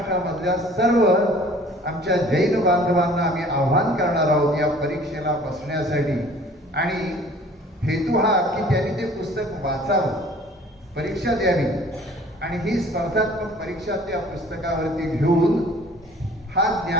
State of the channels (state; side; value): normal; both; correlation 0.51